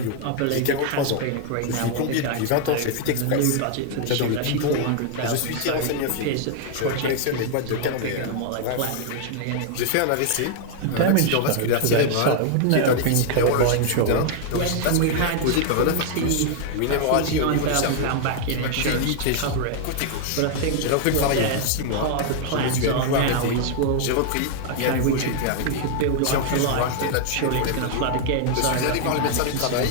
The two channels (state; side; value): different; both; correlation 0.00